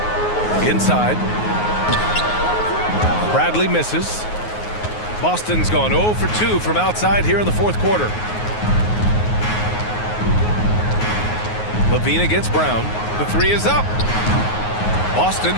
Inside. Bradley misses. Boston's gone 0 for 2 from outside here in the fourth quarter. LaVine against Brown. The 3 is up. Boston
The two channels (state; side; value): late; right; 9.5 ms